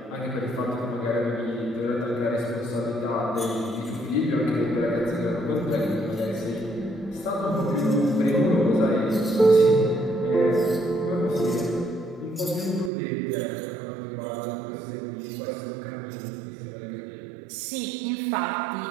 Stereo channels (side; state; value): left; drops out; at 12.9 s